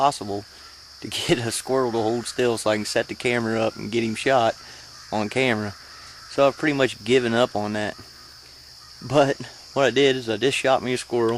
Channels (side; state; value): both; identical; correlation 1.00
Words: to get a squirrel to hold still so I can set the camera up and get him shot on camera. So I've pretty much given up on that. But what I did is I just shot me a